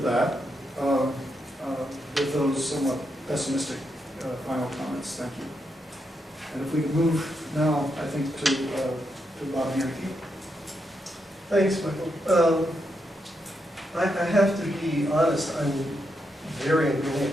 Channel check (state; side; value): normal; both; correlation 0.82